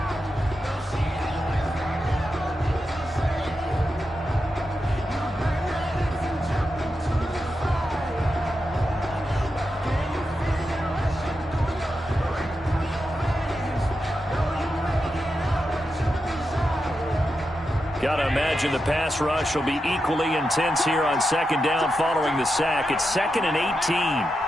Got to imagine the pass rush will be equally intense here on second down following the sack. It's 2nd and 18.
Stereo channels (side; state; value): both; normal; correlation 0.88